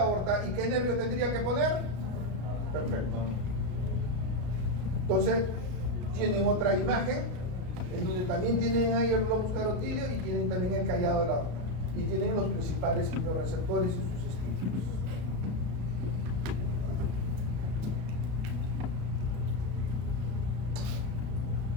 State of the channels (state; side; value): late; left; 33 ms